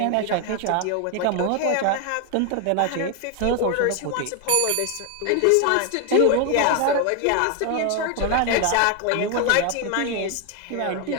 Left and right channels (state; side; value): different; both; correlation 0.01